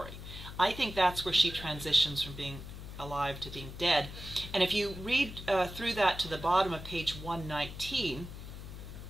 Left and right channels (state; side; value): noise; left; hum, 11 dB below the sound